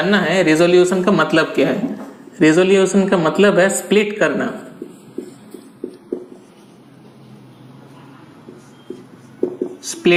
है रेजोल्यूशन का मतलब क्या है। रेजोल्यूशन का मतलब है स्प्लिट करना।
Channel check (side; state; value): both; identical; correlation 1.00